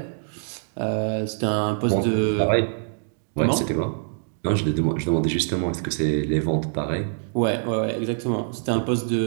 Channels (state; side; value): silent; left; digital silence